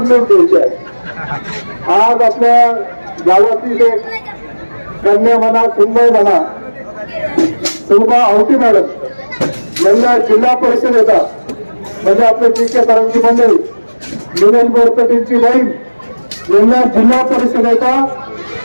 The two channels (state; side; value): inverted; both; correlation -1.00